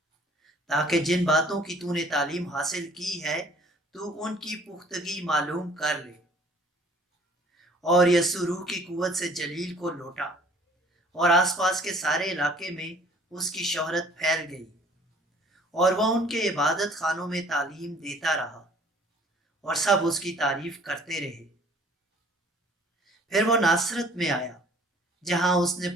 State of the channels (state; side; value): normal; both; correlation 0.55